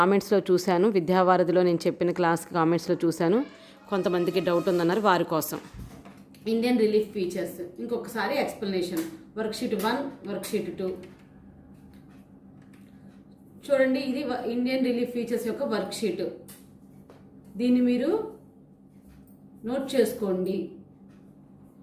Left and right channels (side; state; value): both; identical; correlation 1.00